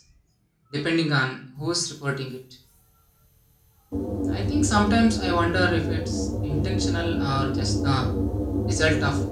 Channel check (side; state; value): both; identical; correlation 1.00